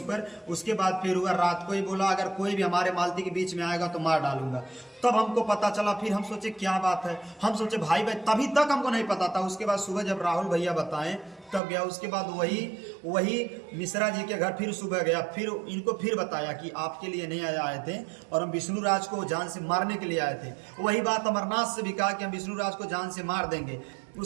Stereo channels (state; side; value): drops out; left; at 11.6 s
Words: पर। उसके बाद फिर हुआ रात को ही बोला अगर कोई भी हमारे मालती के बीच में आएगा तो मार डालूंगा। तब हमको पता चला, फिर हम सोचे क्या बात है, हम सोचे भाई भाई, तभी तक हमको नहीं पता था। उसके बाद सुबह जब राहुल भैया बताएं तब गया। उसके बाद वही मिश्रा जी के घर फिर सुबह गया, फिर इनको फिर बताया कि आपके लिए नहीं आए थे और हम विष्णु राज को जान से मारने के लिए आए थे। वही बात अमरनाथ से भी कहा कि हम विष्णु राज को जान से मार देंगे।